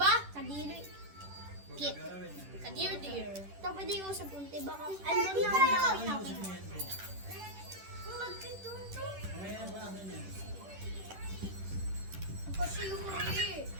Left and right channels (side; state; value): left; late; 10 ms